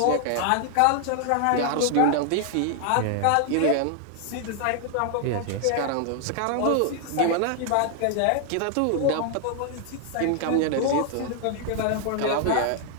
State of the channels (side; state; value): both; different; correlation 0.00